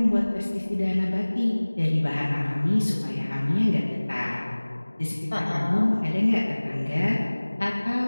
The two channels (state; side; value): inverted; both; correlation -1.00